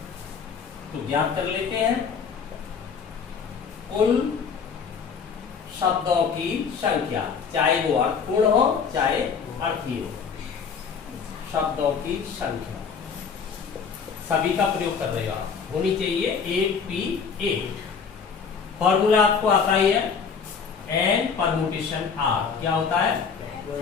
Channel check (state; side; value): quieter; right; 6.1 dB